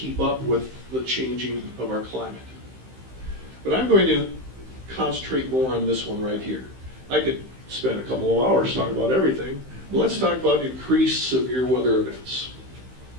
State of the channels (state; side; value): late; left; 15 ms